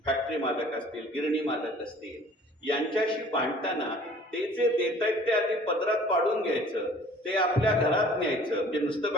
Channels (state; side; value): normal; both; correlation 0.51